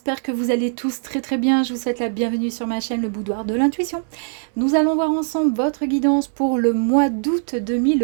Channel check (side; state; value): left; silent; 64 dB below the other